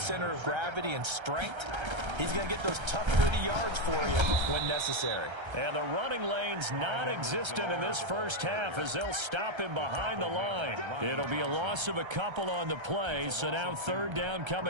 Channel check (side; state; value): left; late; 1.3 ms